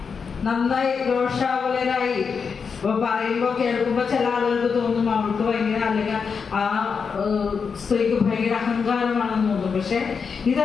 നന്നായി രോഷാകുലരായി പറയുമ്പോ കേൾക്കുമ്പോ ചില ആളുകൾക്ക് തോന്നും അവൾക്ക് ഭയങ്കര, അല്ലെങ്കിൽ ആ സ്ത്രീക്ക് ഭയങ്കര അഹങ്കാരമാണെന്ന് തോന്നും. പക്ഷെ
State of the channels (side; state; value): right; quieter; 5.8 dB